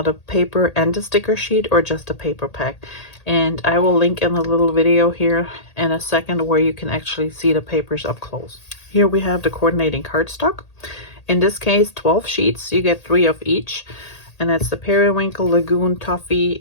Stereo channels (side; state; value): right; late; 1.8 ms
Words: paper and the sticker sheet, or just a paper pack. And I will link in a little video here in a second where you can actually see the papers up close. Here we have the coordinating cardstock. In this case, 12 sheets. You get 3 of each. And that's the Periwinkle, Lagoon, Toffee,